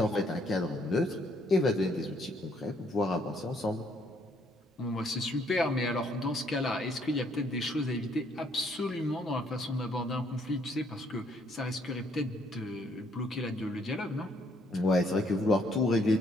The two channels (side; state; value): both; normal; correlation 0.67